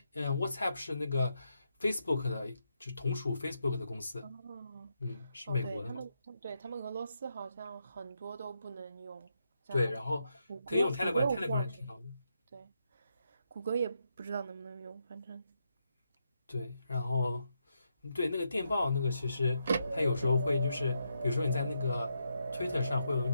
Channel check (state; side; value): inverted; both; correlation -0.81